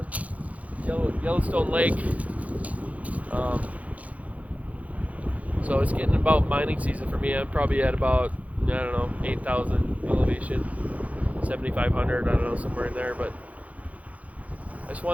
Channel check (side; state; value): left; late; 0.069 ms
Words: Yellowstone Lake. So it's getting about mining season for me. I'm probably at about, 8,000 elevation, 7,500, I don't know, somewhere in there. But I just